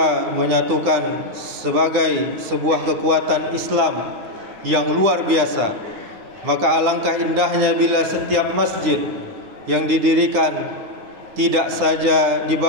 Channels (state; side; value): late; left; 10 ms